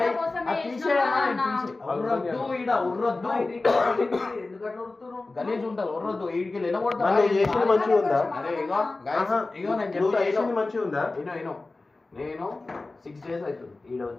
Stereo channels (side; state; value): right; quieter; 3.3 dB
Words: అది తీసేయన్నా, నేను తీసే ఉర్రద్దు. ఈడ ఉర్రద్దు, గలీజ్ ఉంటుంది. ఉర్రద్దు, ఈడికి లేనబడతా. నువ్వు చేసింది మంచిగా ఉందా? అరే ఇగో guys, ఇగో నేను నువ్వు చెప్తా. చేసింది మంచిగా ఉందా? నేను 6 days అవుతుంది ఈడ